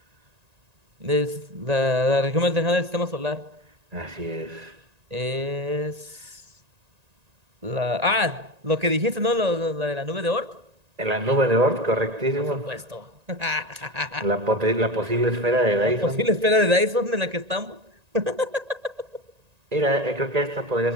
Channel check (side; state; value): left; late; 1.9 ms